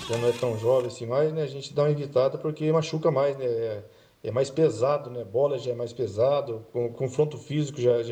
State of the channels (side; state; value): both; identical; correlation 1.00